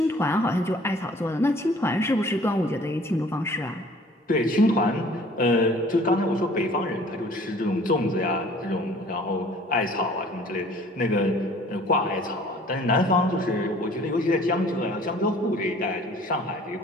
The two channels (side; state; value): both; normal; correlation 0.51